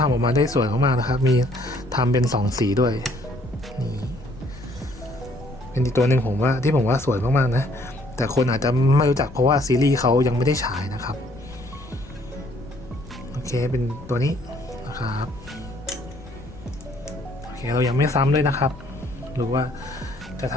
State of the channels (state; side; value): noise; left; rumble, 17 dB below the sound